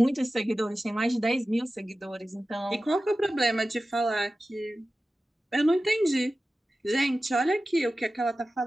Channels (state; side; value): normal; both; correlation 0.95